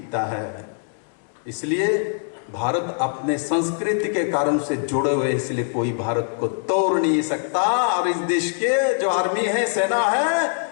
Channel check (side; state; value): right; silent; digital silence